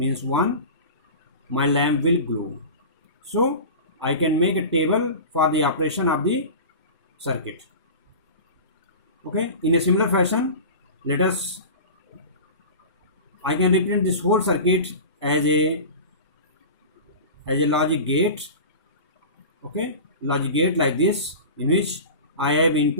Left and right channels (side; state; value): both; inverted; correlation -0.33